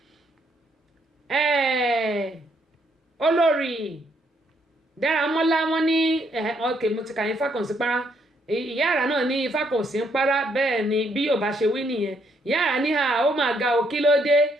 olórí Dáramọ́lá wọn ní ok mo ti kà yín Fákànsí para ìyá àrà náà ní Fákànsí ń para bẹ́ẹ̀ ni bí yóò bá ṣe wí nìyẹn ìyá àrà ní ó máa ga o kí ló dé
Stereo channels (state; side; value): normal; both; correlation 0.72